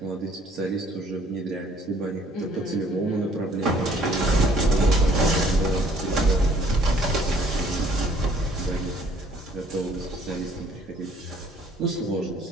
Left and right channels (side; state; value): both; normal; correlation 0.60